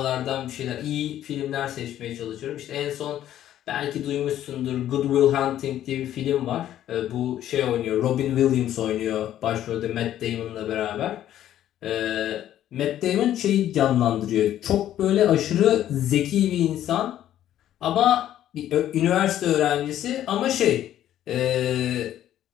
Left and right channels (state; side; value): quieter; right; 11.9 dB